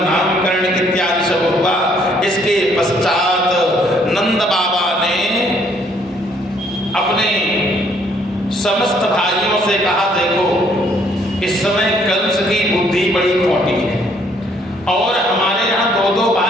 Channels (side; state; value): both; normal; correlation 0.65